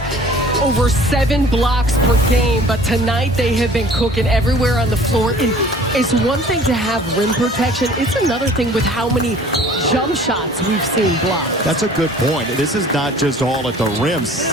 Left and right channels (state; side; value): normal; both; correlation 0.50